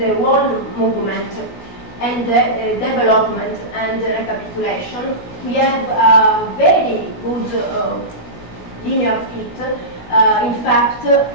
wall movement and the development and recapitulation, we have a very good linear fit. In fact,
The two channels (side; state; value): right; late; 16 ms